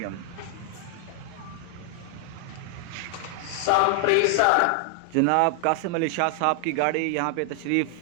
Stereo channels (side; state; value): both; different; correlation 0.00